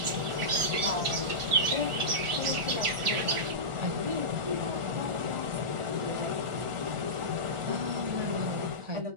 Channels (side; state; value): left; late; 1.4 ms